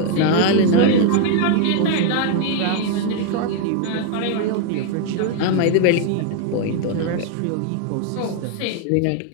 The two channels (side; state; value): both; different; correlation 0.00